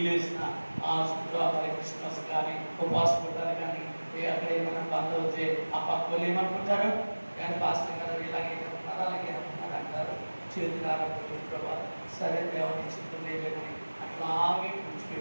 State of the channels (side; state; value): both; inverted; correlation -1.00